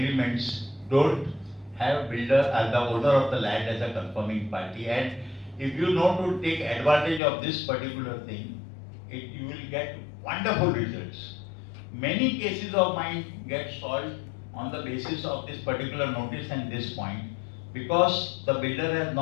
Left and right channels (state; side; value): drops out; right; at 7.2 s